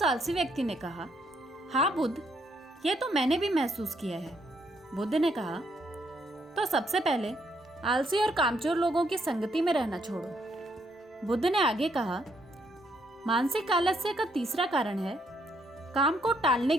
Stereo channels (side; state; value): both; normal; correlation 0.73